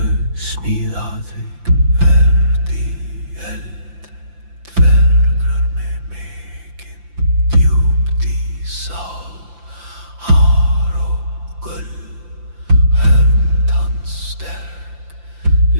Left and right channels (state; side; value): late; left; 5.8 ms